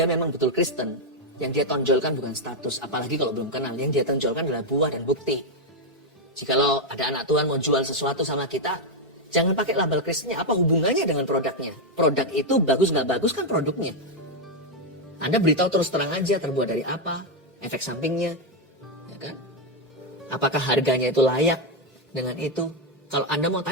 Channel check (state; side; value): normal; both; correlation 0.03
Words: memang betul Kristen, yang dia tonjolkan bukan status, apalagi kalau belum kenal, yang dia tonjolkan adalah buah dan bukti. Jikalau ada anak Tuhan mau jual sesuatu sama kita, jangan pakai label Kristennya, apa hubungannya dengan produknya? Produk itu bagus nggak bagus kan produknya. Anda beritahu terus terang aja terbuat dari apa, efek sampingnya, ya kan? Apakah harganya itu layak dengan itu? Kalau Anda mau